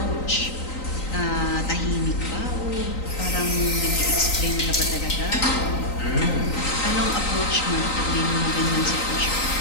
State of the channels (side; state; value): right; late; 3.9 ms